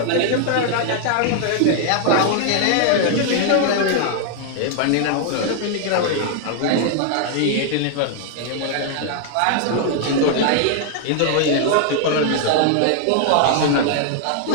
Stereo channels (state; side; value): different; both; correlation 0.00